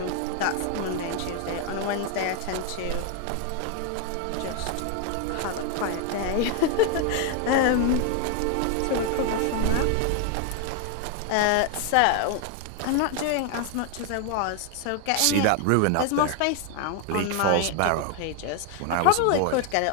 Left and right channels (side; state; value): both; different; correlation 0.01